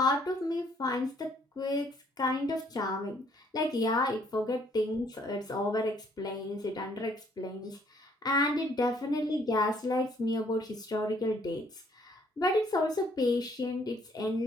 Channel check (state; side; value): normal; both; correlation 0.64